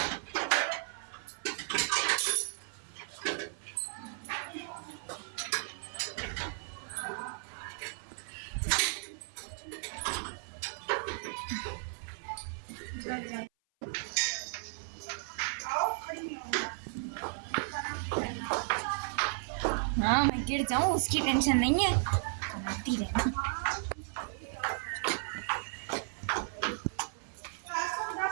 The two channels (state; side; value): silent; left; 55 dB below the other